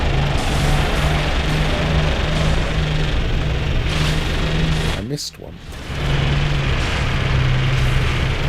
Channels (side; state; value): both; identical; correlation 1.00